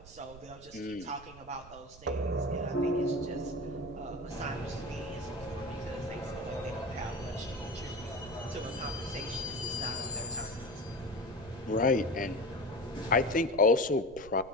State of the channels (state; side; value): noise; right; rumble, 19 dB below the sound